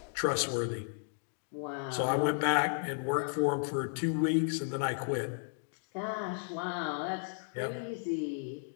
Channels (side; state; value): right; silent; digital silence